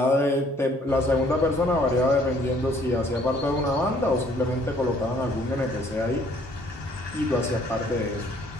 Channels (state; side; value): normal; both; correlation 0.61